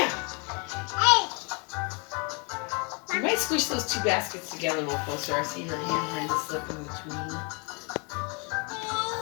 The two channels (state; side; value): quieter; right; 32.4 dB